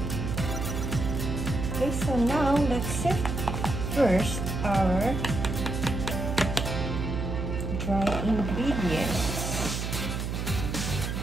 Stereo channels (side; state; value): right; noise; hum, 3 dB below the sound